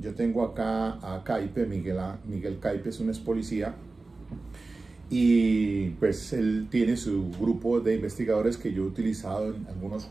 tengo acá a Caipe, Miguel Caipe es un ex policía, y pues él tiene su grupo de investigadores que yo he utilizado en algunos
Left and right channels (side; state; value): left; quieter; 3.5 dB